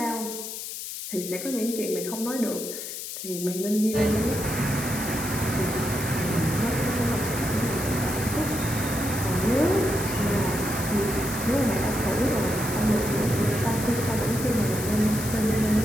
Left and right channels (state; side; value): noise; left; hiss, 7 dB below the sound